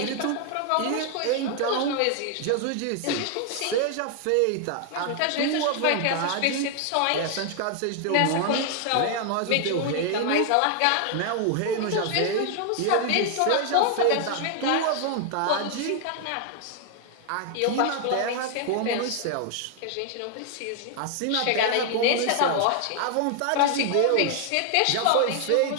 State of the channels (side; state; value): both; different; correlation 0.00